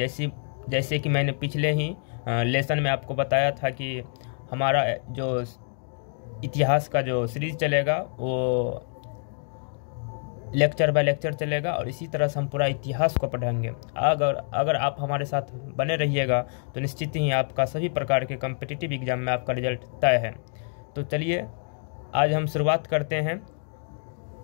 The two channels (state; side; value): silent; right; 60 dB below the other